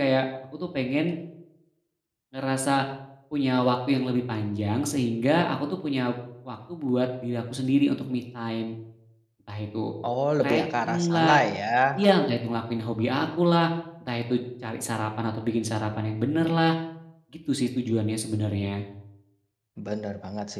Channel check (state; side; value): identical; both; correlation 1.00